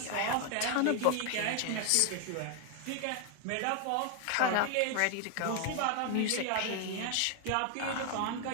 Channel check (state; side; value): different; both; correlation 0.00